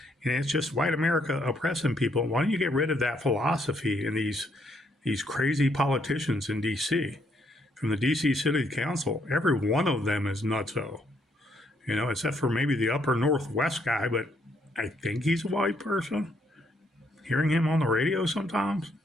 and it's just white America oppressing people, why don't you get rid of that philosophy and these crazy politicians in D.C.? From the D.C. City Council, every one of them is nutso. You know, except for maybe the upper Northwest guy, but I think he's a white person. Hearing him on the radio sometimes,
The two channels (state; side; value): normal; both; correlation 0.72